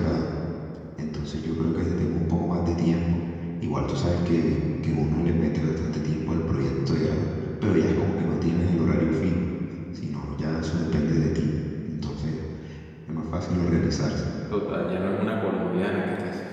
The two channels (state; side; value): identical; both; correlation 1.00